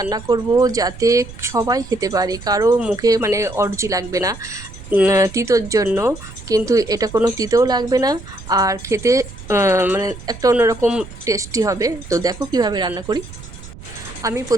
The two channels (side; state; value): right; noise; rumble, 15 dB below the sound